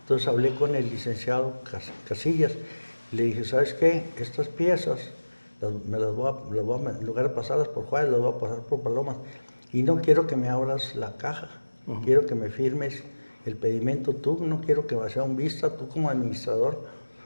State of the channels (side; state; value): both; inverted; correlation -1.00